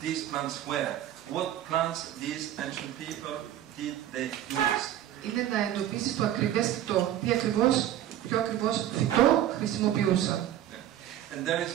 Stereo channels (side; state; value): left; quieter; 11.9 dB